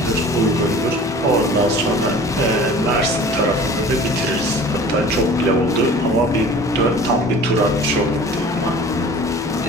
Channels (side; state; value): both; normal; correlation 0.43